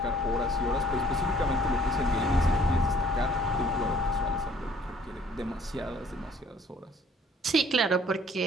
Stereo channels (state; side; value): normal; both; correlation 0.58